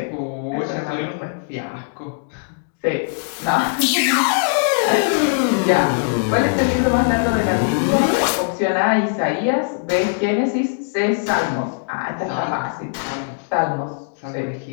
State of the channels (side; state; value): right; silent; digital silence